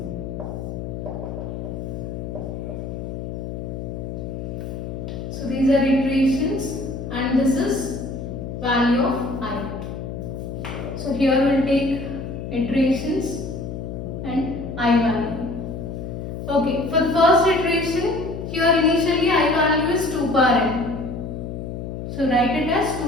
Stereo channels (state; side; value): noise; left; hum, 7 dB below the sound